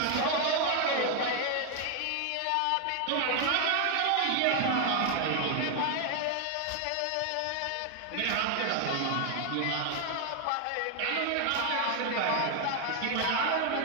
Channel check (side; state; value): both; different; correlation 0.01